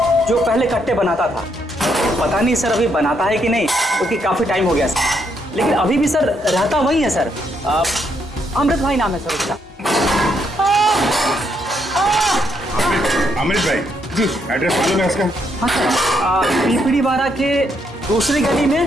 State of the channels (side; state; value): both; normal; correlation 0.75